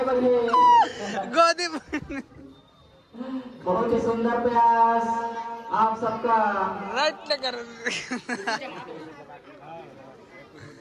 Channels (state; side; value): identical; both; correlation 1.00